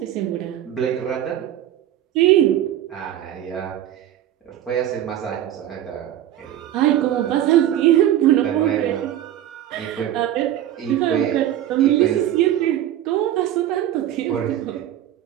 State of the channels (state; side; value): quieter; left; 12.0 dB